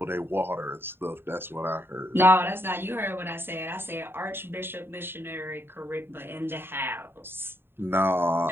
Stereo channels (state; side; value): late; left; 0.11 ms